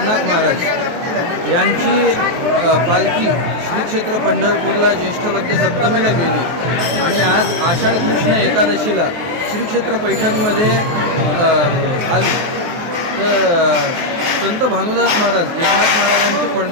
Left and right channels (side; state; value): left; late; 23 ms